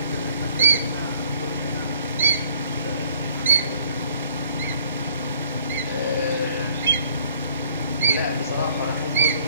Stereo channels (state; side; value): inverted; both; correlation -0.59